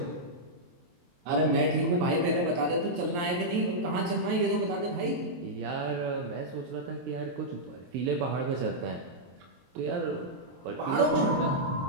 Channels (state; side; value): late; left; 23 ms